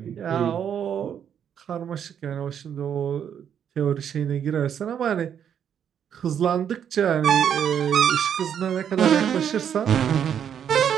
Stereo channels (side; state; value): left; quieter; 8.6 dB